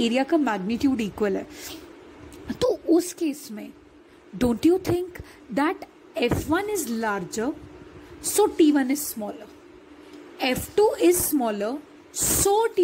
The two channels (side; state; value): both; identical; correlation 1.00